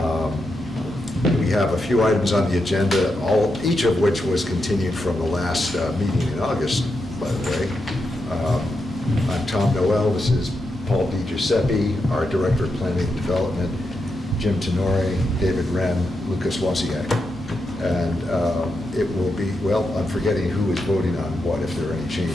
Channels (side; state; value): both; normal; correlation 0.85